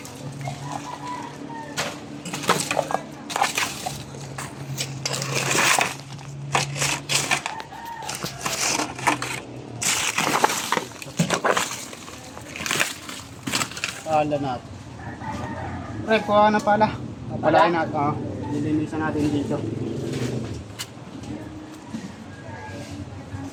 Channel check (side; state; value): both; identical; correlation 1.00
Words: Pala natin. Pre, kuha na pala. Papalain natin. Lilinisan natin dito.